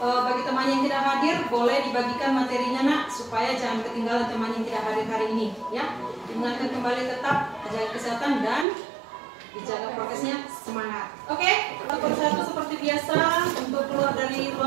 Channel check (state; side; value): drops out; left; at 8.7 s